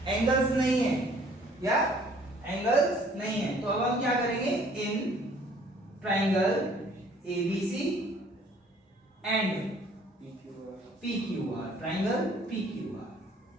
एंगल्स नहीं है, या एंगल्स नहीं है। तो अब हम क्या करेंगे, in triangle ABC and PQR, triangle PQR,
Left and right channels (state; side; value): normal; both; correlation 0.57